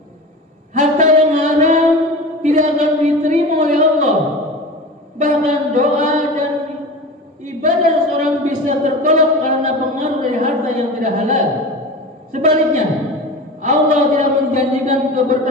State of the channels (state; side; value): normal; both; correlation 0.31